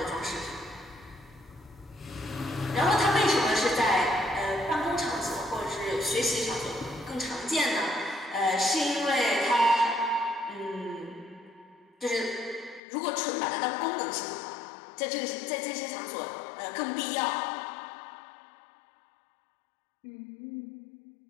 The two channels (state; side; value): drops out; right; at 12.8 s